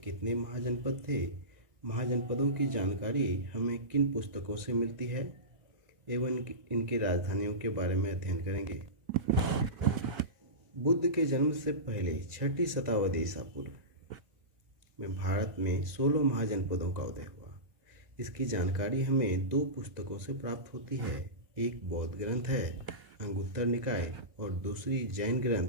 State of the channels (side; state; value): left; late; 1.9 ms